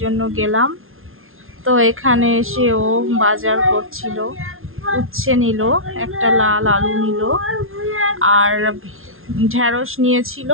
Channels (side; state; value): left; late; 0.61 ms